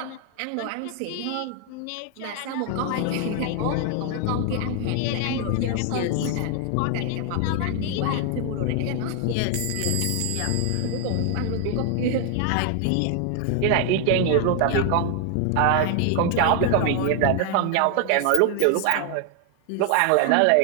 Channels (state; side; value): different; both; correlation 0.00